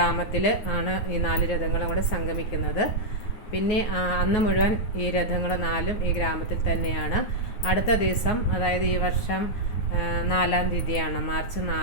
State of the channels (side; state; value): right; late; 9.5 ms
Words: ആണ് ഈ 4 രഥങ്ങളും കൂടെ സംഗമിക്കുന്നത്. പിന്നെ അന്ന് മുഴുവൻ ഈ രഥങ്ങൾ 4ഉം ഈ ഗ്രാമത്തിൽ തന്നെയാണ്. അടുത്ത ദിവസം, അതായത് ഈ വർഷം 4-ാം തീയതിയാണ്, മാർച്ച്